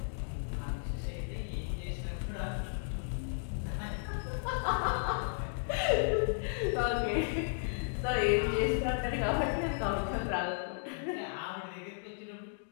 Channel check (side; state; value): right; silent; digital silence